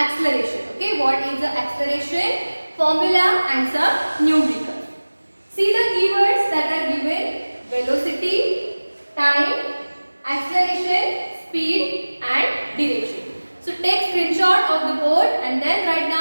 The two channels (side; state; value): both; inverted; correlation -1.00